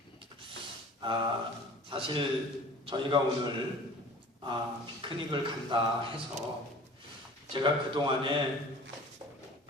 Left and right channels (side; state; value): both; normal; correlation 0.44